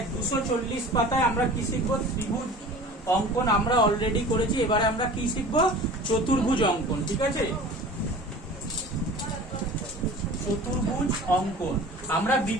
240 পাতায় আমরা কি শিখবো? ত্রিভুজ অঙ্কন আমরা অলরেডি করেছি, এবারে আমরা কি শিখবো? চতুর্ভুজ অঙ্কন। ঠিক আছে, চতুর্ভুজ অঙ্কন। আমরা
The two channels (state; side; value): normal; both; correlation 0.41